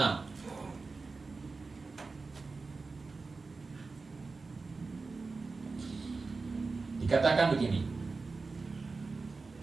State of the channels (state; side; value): quieter; left; 4.1 dB